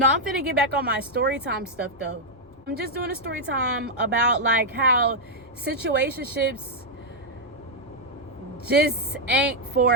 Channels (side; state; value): both; normal; correlation -0.03